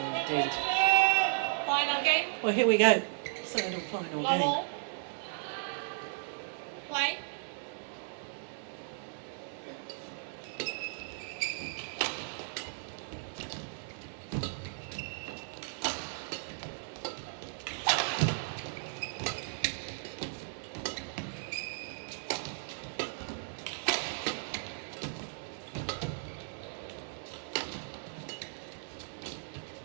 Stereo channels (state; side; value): silent; left; 54 dB below the other